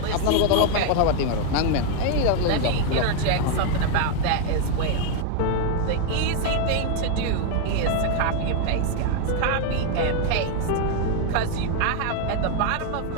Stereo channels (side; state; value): both; different; correlation 0.01